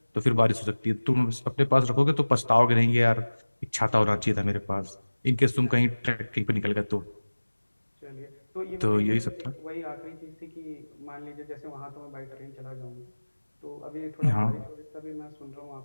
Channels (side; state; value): both; inverted; correlation -1.00